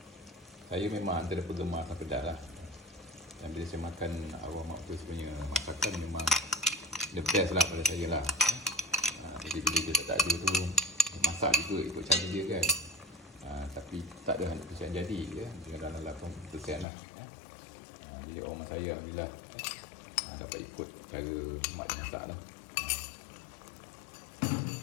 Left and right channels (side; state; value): right; drops out; at 16.9 s